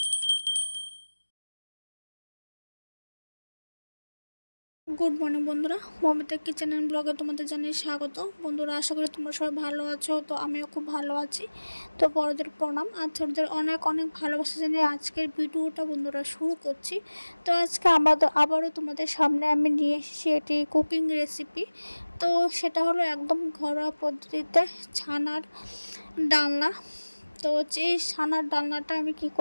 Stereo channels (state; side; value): inverted; both; correlation -1.00